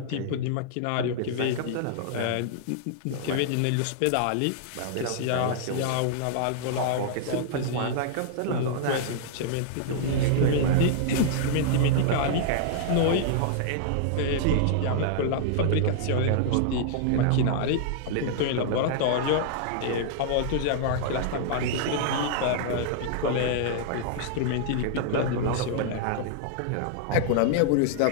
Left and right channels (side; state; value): both; different; correlation -0.01